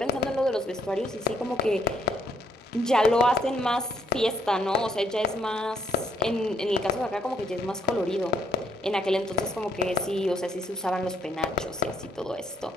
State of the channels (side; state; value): both; normal; correlation 0.70